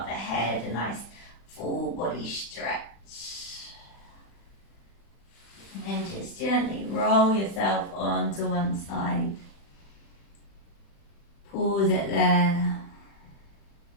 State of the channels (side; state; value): right; late; 36 ms